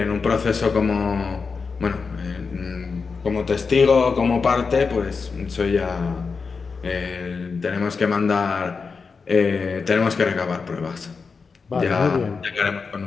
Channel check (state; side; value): quieter; right; 5.0 dB